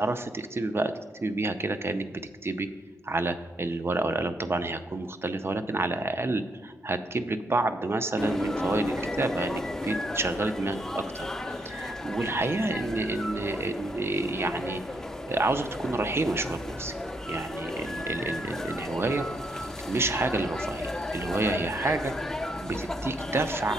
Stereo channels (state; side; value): normal; both; correlation 0.75